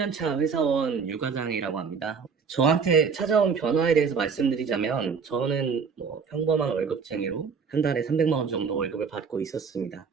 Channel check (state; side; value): quieter; left; 5.8 dB